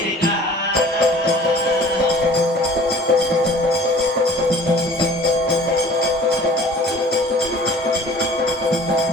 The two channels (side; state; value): both; normal; correlation 0.48